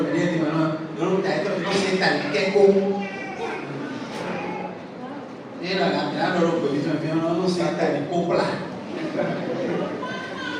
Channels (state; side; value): identical; both; correlation 1.00